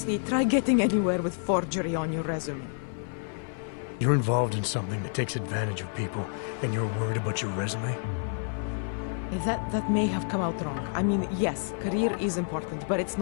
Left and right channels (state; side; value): silent; right; 56 dB below the other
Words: try getting anywhere with forgery on your resume. You're involved in something that takes advantage of people, and you're worried about your resume? That may have come out wrong. I mean, yes, career is important, but it's